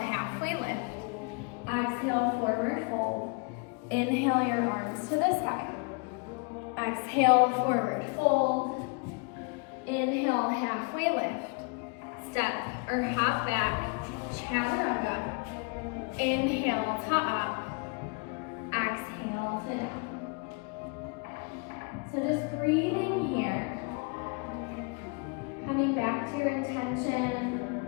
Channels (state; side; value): quieter; right; 32.9 dB